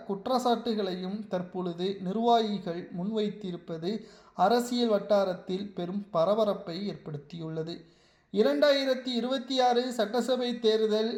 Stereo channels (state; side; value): identical; both; correlation 1.00